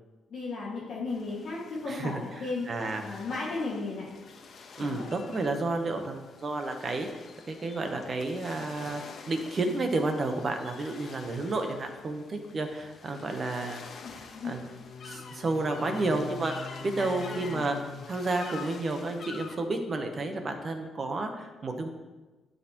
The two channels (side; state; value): both; normal; correlation 0.81